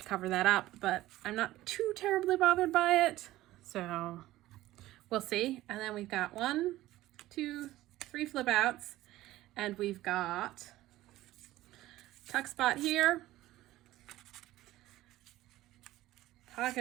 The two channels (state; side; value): quieter; left; 16.1 dB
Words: cover that up, but I'm not too terribly bothered by it. So we'll see. And then we've got 1, 2, 3 flip outs, and we've got tuck spot here,